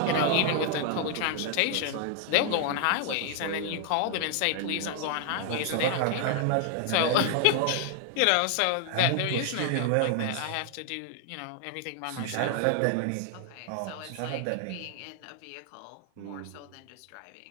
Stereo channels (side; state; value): both; different; correlation 0.00